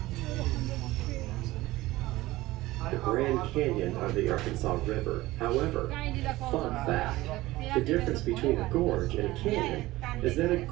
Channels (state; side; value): quieter; left; 18.2 dB